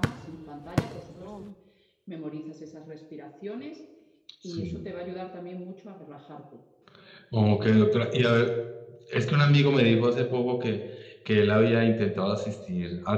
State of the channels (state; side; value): identical; both; correlation 1.00